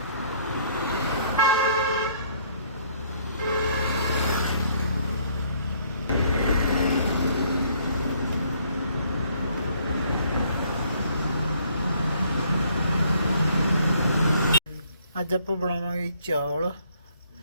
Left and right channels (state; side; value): inverted; both; correlation -0.64